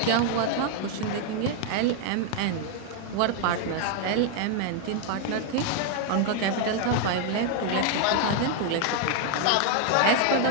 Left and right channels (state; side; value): different; both; correlation 0.00